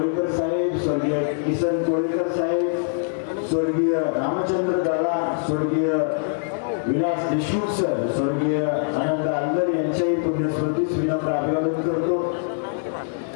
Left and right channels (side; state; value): right; silent; 62 dB below the other